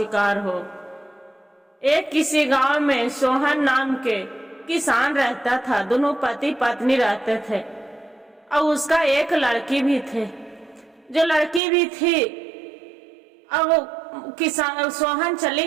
हो। एक किसी गांव में सोहन नाम के किसान रहता था। दोनों पति पत्नी रहते थे और उसका एक लड़की भी थे। जो लड़की भी थी, अब किसान सोहन चले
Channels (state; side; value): drops out; left; at 11.6 s